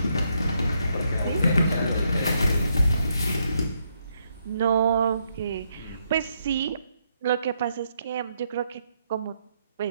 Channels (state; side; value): inverted; both; correlation -0.76